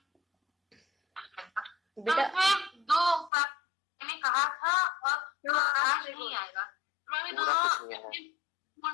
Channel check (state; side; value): drops out; right; at 3.3 s